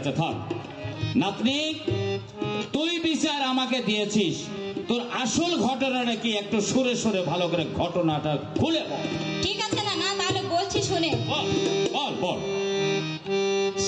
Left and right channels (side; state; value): both; identical; correlation 1.00